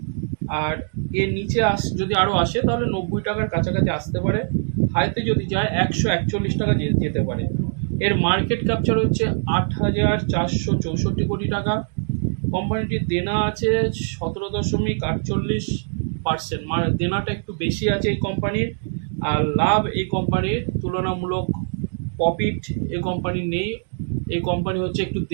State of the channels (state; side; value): silent; left; digital silence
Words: আর এর নিচে যদি আরও আসে তাহলে 90 টাকার কাছাকাছি আসতে পারে, হাইতে যদি যায় 141 টাকা যেতে পারে। এর মার্কেট ক্যাপচার হচ্ছে 8,464 কোটি টাকা। কোম্পানিটির দেনা আছে 17.48%, দেনাটা একটু বেশি আছে এই কোম্পানির। আর লাভ এই কোম্পানির তুলনামূলক প্রফিট এই কোম্পানির নেই। এই কোম্পানি হচ্ছে একটু